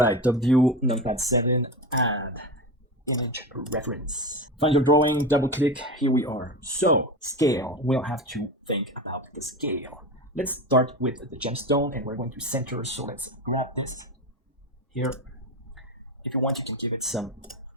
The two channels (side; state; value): both; normal; correlation 0.23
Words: top view, numpad 7, add image reference. Find your drawing, double click, here we are. So, scale, we'll have to think about the scale. Let's start with the gemstone and we're going to center, so let's grab this here. If you want, you can give it some